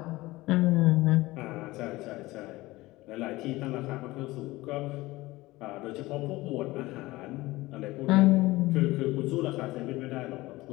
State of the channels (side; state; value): right; quieter; 19.5 dB